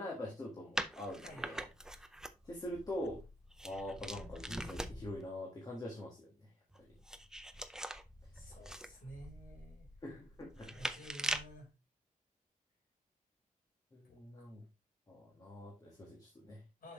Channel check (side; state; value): both; normal; correlation 0.75